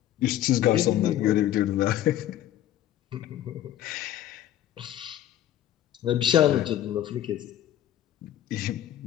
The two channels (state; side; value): quieter; right; 12.3 dB